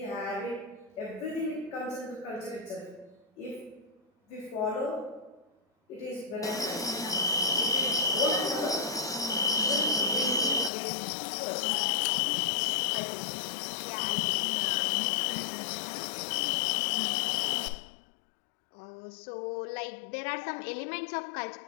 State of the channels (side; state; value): right; drops out; at 10.7 s